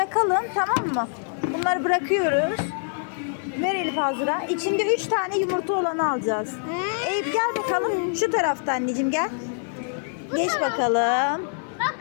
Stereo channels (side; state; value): right; silent; 55 dB below the other